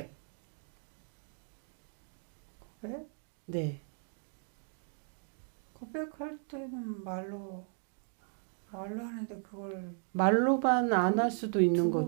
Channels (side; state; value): left; silent; 54 dB below the other